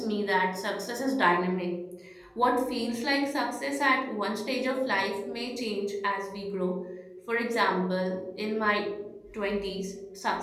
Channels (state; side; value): identical; both; correlation 1.00